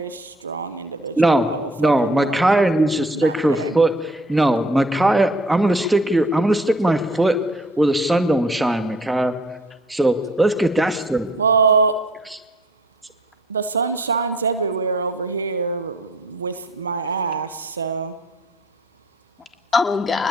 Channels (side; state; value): both; normal; correlation 0.57